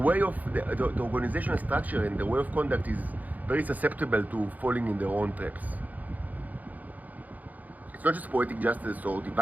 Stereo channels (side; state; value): left; late; 0.079 ms